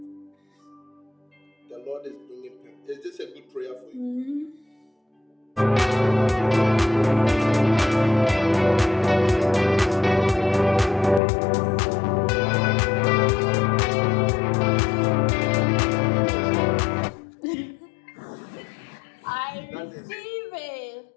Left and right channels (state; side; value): drops out; right; at 11.2 s